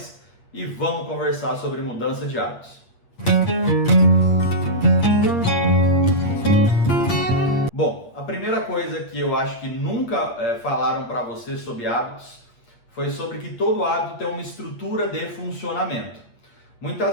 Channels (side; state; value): right; late; 8.5 ms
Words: e vamos conversar sobre mudança de hábitos. Bom, a primeira coisa que eu acho que nunca falaram para você sobre hábitos foi sobre que todo hábito tem uma estrutura de funcionamento.